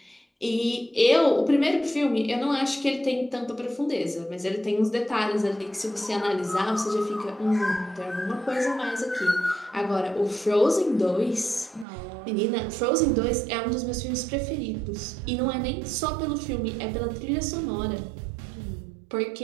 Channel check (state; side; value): drops out; left; at 11.9 s